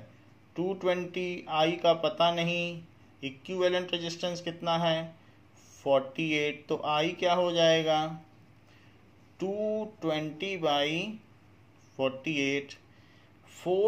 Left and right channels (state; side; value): identical; both; correlation 1.00